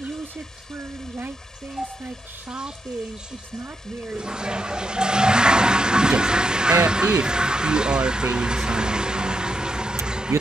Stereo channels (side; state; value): both; normal; correlation 0.83